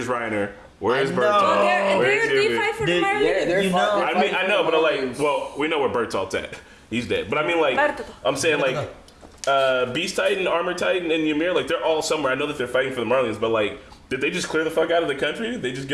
Reiner? Where is I know. Bertolt? Where is They Yubi? fight for the Dude, Marlians. they're You fi- know- they're I mean, fighting I know, for but like, aliens. well, we know where Bertolt's at. He's dead. But I mean, like, Bertolt. I'm saying, like, Beast Titan, Armor Titan, and Ymir, like, they're all somewhere. I know that they're fighting for the Marlians, but like, did they just clear the fuck out of the country? Did they just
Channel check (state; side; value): identical; both; correlation 1.00